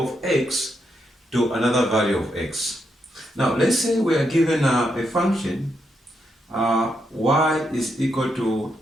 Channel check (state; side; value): normal; both; correlation 0.81